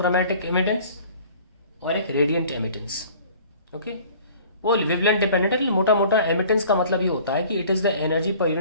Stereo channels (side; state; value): both; inverted; correlation -0.49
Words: एमिटेंस और एक रेडियंट एमिटेंस। ओके, वो वेवलेंथ डिपेंडेंट है। मोटा मोटा एमिटेंस का मतलब ये होता है कि it is the energy per